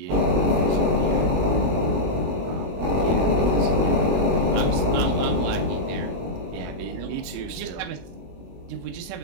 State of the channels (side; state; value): left; late; 21 ms